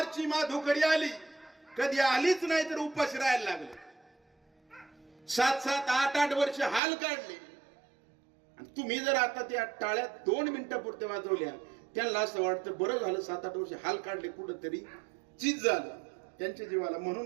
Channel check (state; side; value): drops out; left; at 6.8 s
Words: माधुकरी आली कधी आलीच नाही तर उपाशी राहायला लागले. 7-7, 8-8 वर्ष हाल काढले. आणि तुम्ही जर आता त्या टाळ्या 2 मिनिटापुरत्या वाजवल्या, त्यांना असं वाटतं बरं झालं 7-8 वर्ष हाल काढले, कुठंतरी चीज झालं त्यांच्या जीवाला.